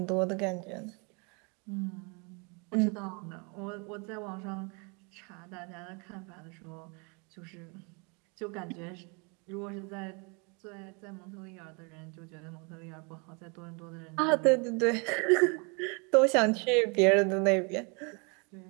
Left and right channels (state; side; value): quieter; left; 32.8 dB